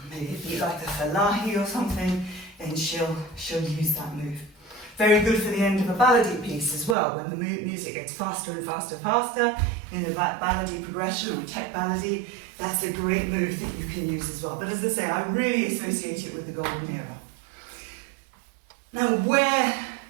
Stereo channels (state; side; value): drops out; left; at 7.0 s